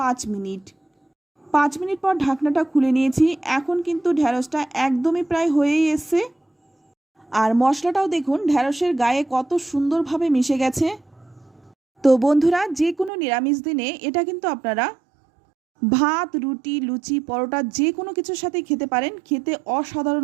মিনিট। 5 মিনিট পর ঢাকনাটা খুলে নিয়েছি। এখন কিন্তু ঢ্যাঁড়সটা একদমই প্রায় হয়েই এসছে। আর মশলাটাও দেখুন ঢ্যাঁড়সের গায়ে কত সুন্দরভাবে মিশে গেছে। তো বন্ধুরা, যে কোনো নিরামিষ দিনে এটা কিন্তু আপনারা ভাত, রুটি, লুচি, পরোটা যে কোনো কিছুর সাথে খেতে পারেন, খেতে অসাধারণ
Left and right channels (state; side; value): drops out; left; at 13.1 s